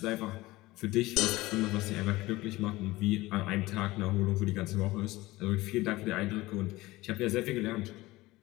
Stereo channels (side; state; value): right; quieter; 19.2 dB